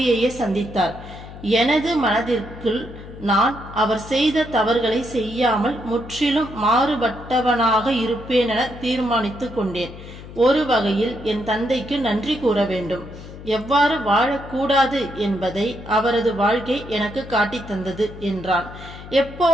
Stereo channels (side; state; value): left; noise; hum, 15 dB below the sound